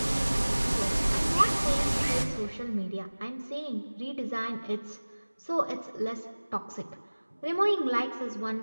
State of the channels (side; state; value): both; inverted; correlation -1.00